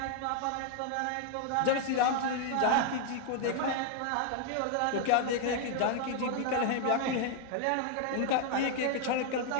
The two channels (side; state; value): both; different; correlation 0.00